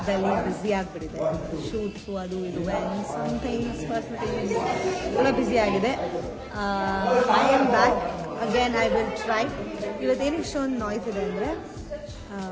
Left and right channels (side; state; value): both; identical; correlation 1.00